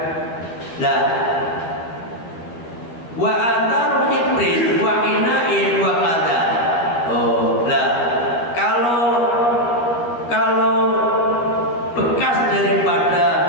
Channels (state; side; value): late; right; 13 ms